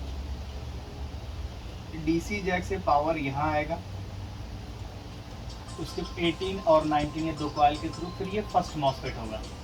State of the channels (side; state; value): both; identical; correlation 1.00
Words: डीसी जैक से पावर यहाँ आएगा, उसके 18 और 19 ये दो कॉइल के थ्रू फिर ये फर्स्ट मॉसफेट होगा,